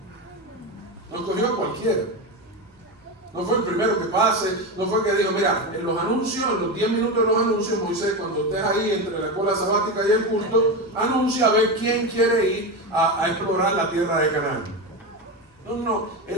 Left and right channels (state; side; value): normal; both; correlation 0.17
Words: No escogió a cualquiera. No fue el primero que pase, no fue que dijo, mira, en los anuncios, en los 10 minutos de los anuncios, Moisés, cuando estés ahí entre la escuela sabática y el culto, anuncia a ver quién quiere ir a explorar la tierra de Canaán. No,